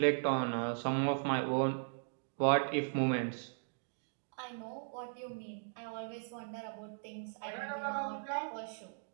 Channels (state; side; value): silent; left; digital silence